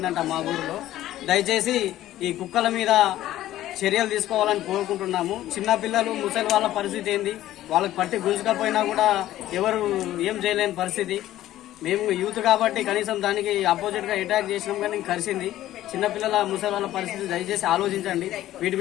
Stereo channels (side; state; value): right; quieter; 14.0 dB